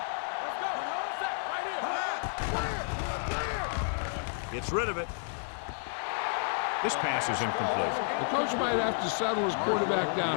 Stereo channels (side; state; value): right; silent; digital silence